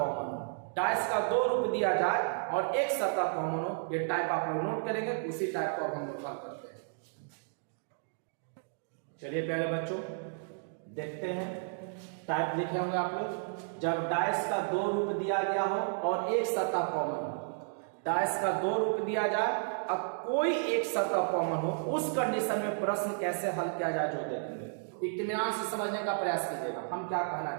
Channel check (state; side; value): silent; left; digital silence